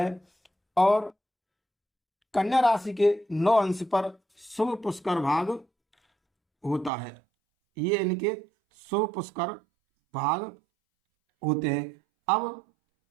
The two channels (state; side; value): drops out; left; at 6.9 s